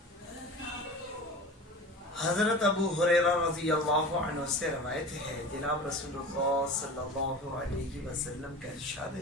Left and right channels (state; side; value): normal; both; correlation 0.35